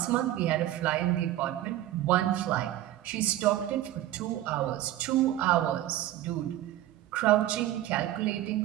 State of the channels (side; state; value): left; quieter; 13.9 dB